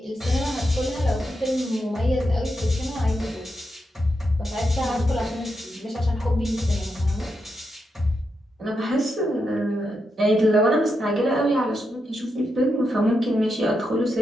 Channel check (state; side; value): normal; both; correlation 0.84